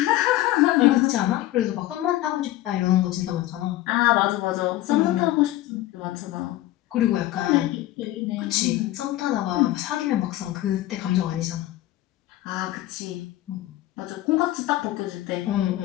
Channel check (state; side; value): quieter; right; 15.4 dB